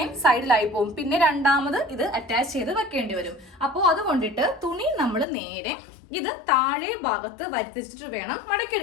സൈഡിലായി പോകും. പിന്നെ രണ്ടാമത് ഇത് അറ്റാച്ച് ചെയ്ത് വെക്കേണ്ടി വരും. അപ്പോൾ അതുകൊണ്ടിട്ട് തുണി നമ്മൾ നേരെ ഇത് താഴെ ഭാഗത്ത് വരുത്തിച്ചിട്ട് വേണം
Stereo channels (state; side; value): drops out; right; at 5.2 s